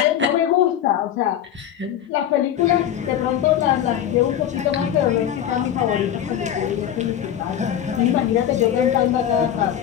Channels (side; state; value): right; quieter; 10.3 dB